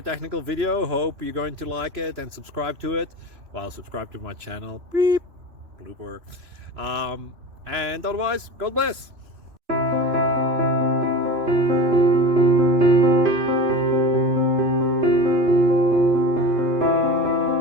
technical video. Hope you're going to like it and subscribe to it. Well, subscribe to my channel. Beep. Blooper. And otherwise, God bless.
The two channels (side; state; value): left; late; 3.0 ms